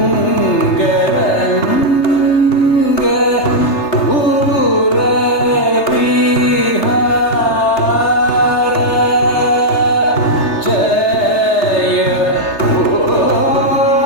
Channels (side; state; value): right; late; 3.3 ms